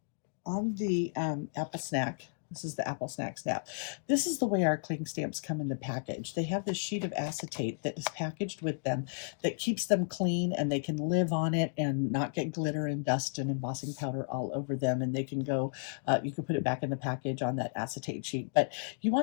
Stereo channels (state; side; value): silent; right; digital silence